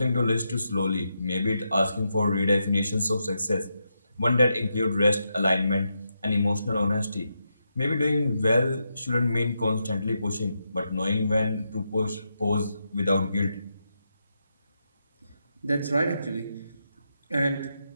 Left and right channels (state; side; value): inverted; both; correlation -0.84